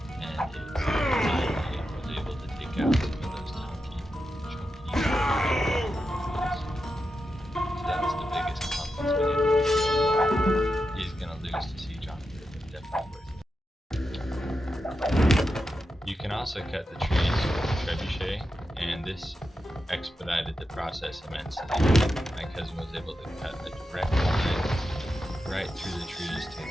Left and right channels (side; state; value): both; normal; correlation 0.88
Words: and it finally was able to take out some of those chunky also cut the trees with a trebuchet, and this expedited the process immensely. My cousin was able to cut a direct line right through the trees to